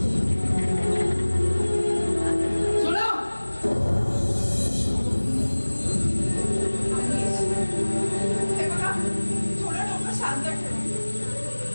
सोना, हे बघा थोडं डोकं शांत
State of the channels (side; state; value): both; inverted; correlation -1.00